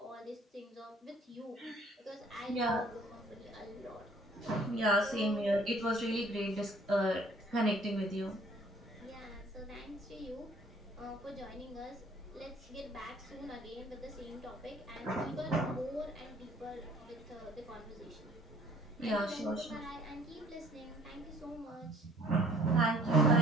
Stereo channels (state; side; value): normal; both; correlation 0.57